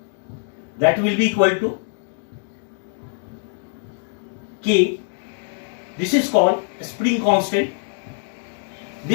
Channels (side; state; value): right; silent; 63 dB below the other